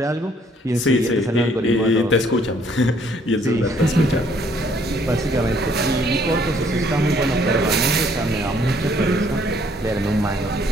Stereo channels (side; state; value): both; normal; correlation 0.64